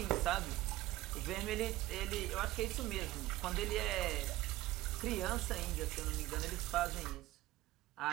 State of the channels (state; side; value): quieter; left; 16.6 dB